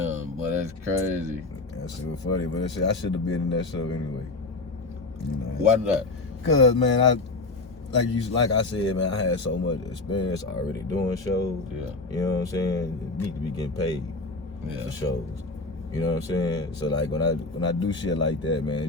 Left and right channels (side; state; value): right; quieter; 3.3 dB